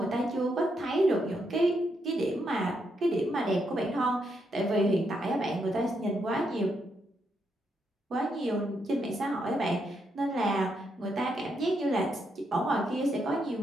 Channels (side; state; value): both; normal; correlation 0.79